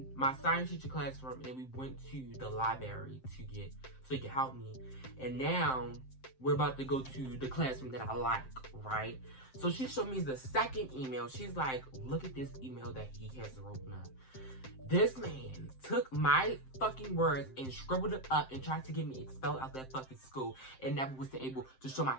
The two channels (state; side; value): late; right; 7.7 ms